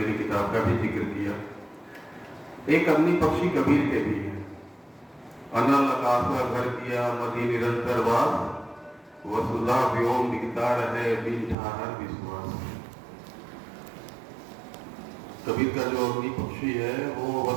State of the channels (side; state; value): left; drops out; at 11.6 s